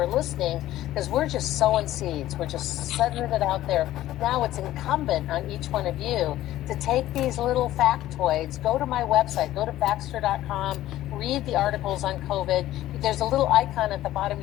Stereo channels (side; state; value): right; quieter; 14.4 dB